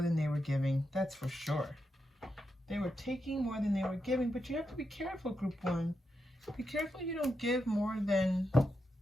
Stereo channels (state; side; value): normal; both; correlation 0.86